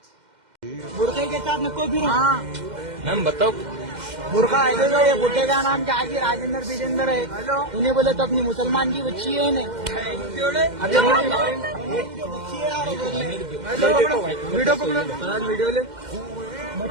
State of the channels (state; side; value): late; left; 2.1 ms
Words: बुरखे के साथ में कोई भी हाँ मैम बताओ। बुरखा है जो ये बुड्ढे का नाम क्या है? राजेंद्र बिजेंद्र है। इन्हें बोले तो अपनी मुसलमान की बच्ची है इन्हें। वीडियो पकड़ो, वीडियो ले